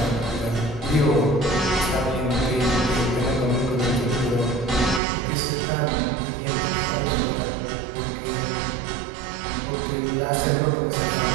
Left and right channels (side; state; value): left; drops out; at 5.0 s